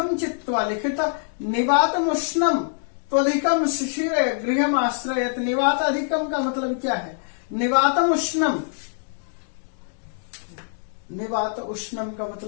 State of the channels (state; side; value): silent; right; digital silence